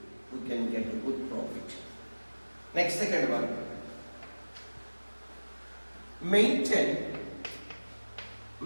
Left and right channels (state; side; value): inverted; both; correlation -1.00